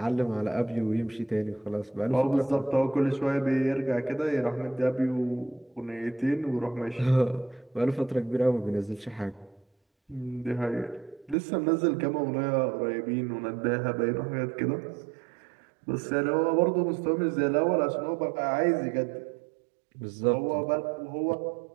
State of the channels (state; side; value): drops out; left; at 11.4 s